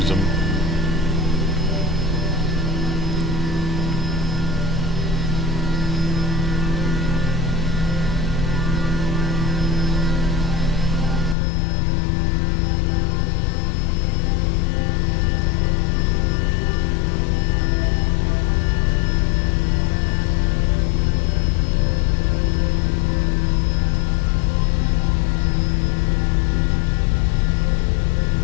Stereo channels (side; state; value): right; drops out; at 11.4 s